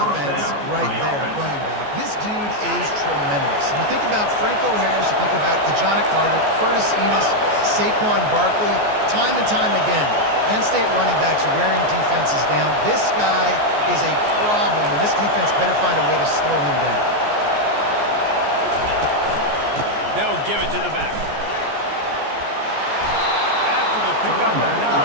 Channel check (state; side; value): late; left; 14 ms